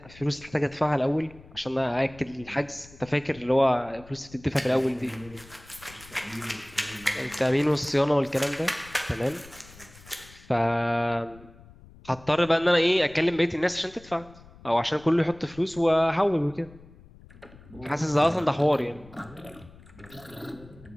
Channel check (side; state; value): left; noise; rumble, 22 dB below the sound